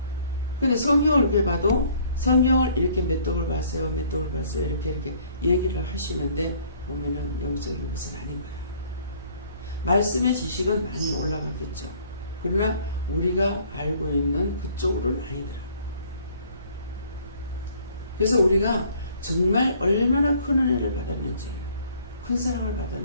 근데 성경을 이렇게 봐도 성경을 이렇게 몇 독을 봤어요. 몇 독을 봤어요. 이렇게 얘기를 하시는데 보면은 영적인 것은 아닌 거예요. 말씀의 지식은 많이 올라가겠죠. 그러나 우리가 알고 있는 그쪽으로는 아니더라고요. 그래서 우리가 정말 얼마나 큰 은혜를 받았는지, 큰 사랑을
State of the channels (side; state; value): both; inverted; correlation -0.58